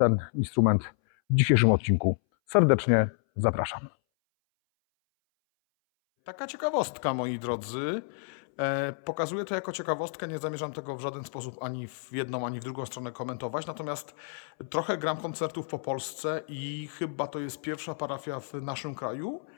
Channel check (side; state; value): right; silent; 58 dB below the other